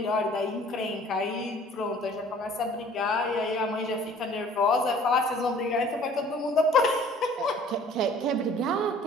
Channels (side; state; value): both; normal; correlation 0.52